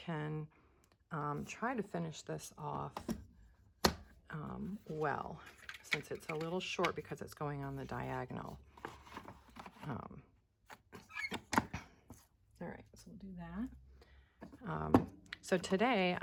try to finish this off well, since it's a little short because it's going on the diagonal. All right, so we'll do that. So today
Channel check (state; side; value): identical; both; correlation 1.00